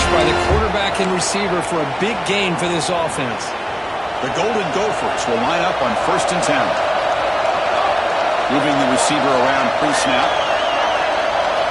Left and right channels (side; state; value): both; identical; correlation 1.00